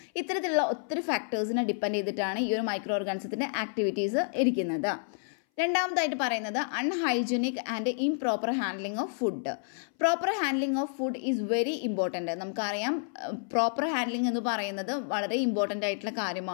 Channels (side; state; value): right; silent; 58 dB below the other